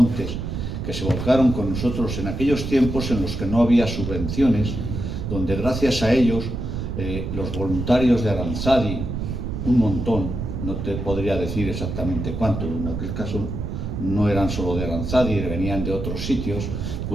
que se volcaron con nosotros en aquellos tiempos en los que no había subvenciones, donde gracias a ellos los voluntarios de Aranzadi, un montón, no te podría decir exactamente cuánto, en aquel caso no eran solo de Aranzadi, venían de otros sitios,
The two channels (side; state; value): right; noise; rumble, 4 dB below the sound